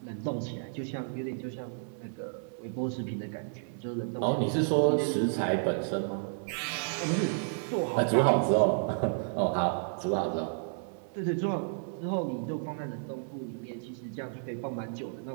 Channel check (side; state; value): left; silent; digital silence